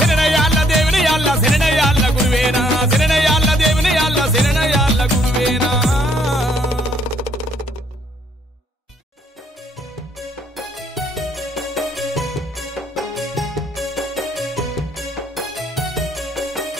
శరణయ్యాళ్ళ దేవుని యాళ్ళ శరణయ్యాళ్ళ గురువేనా శరణయ్యాళ్ళ దేవుని యాళ్ళ శరణయ్యాళ్ళ గురువేనా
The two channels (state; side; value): normal; both; correlation 0.67